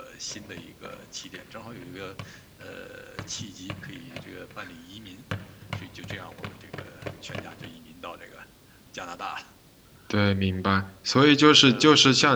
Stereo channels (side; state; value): both; identical; correlation 1.00